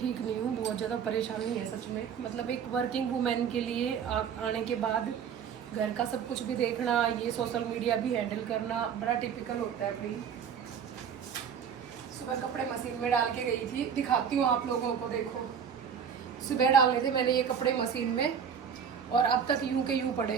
नहीं हूँ, बहुत ज़्यादा परेशानी है सच में। मतलब एक वर्किंग वुमेन के लिए आने के बाद घर का सब कुछ भी देखना, ये सोशल मीडिया भी हैंडल करना बड़ा टिपिकल होता है भाई। सुबह कपड़े मशीन में डाल के गई थी, दिखाती हूँ आप लोगों को। देखो, सुबह डाले थे मैंने ये कपड़े मशीन में और अब तक यूं के यूं पड़े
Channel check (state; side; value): quieter; left; 7.6 dB